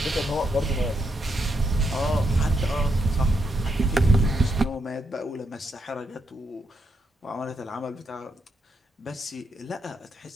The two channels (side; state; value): both; normal; correlation 0.80